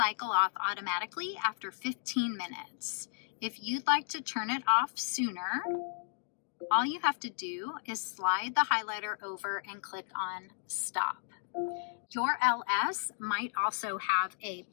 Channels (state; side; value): silent; right; digital silence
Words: off automatically after 15 minutes. If you'd like to turn it off sooner, All you have to do is slide the highlighter over and click on Stop. Your LS might also have a